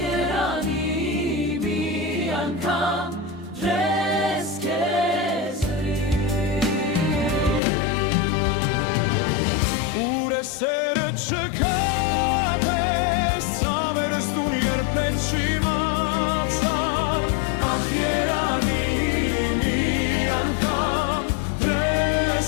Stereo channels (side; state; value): right; drops out; at 7.6 s